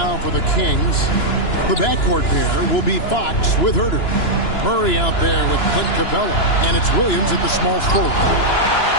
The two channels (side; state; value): right; late; 2.9 ms